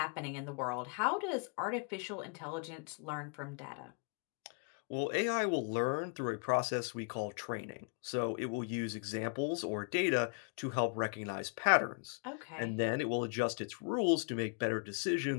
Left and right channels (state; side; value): quieter; right; 37.8 dB